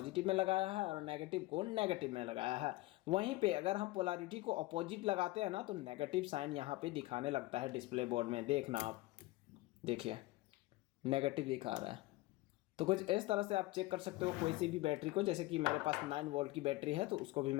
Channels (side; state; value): right; quieter; 19.6 dB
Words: में लगाया है और नेगेटिव को नेगेटिव में लगाया है। वहीं पे अगर हम पोलैरिटी को अपोजिट लगाते हैं ना तो नेगेटिव साइन यहाँ पे दिखाने लगता है डिस्प्ले बोर्ड में। देखना आप, देखिए नेगेटिव दिखा रहा है। तो कुछ इस तरह से आप चेक कर सकते हो कोई सी भी बैटरी को। जैसे कि मेरे पास 9 वोल्ट की बैटरी है तो उसको भी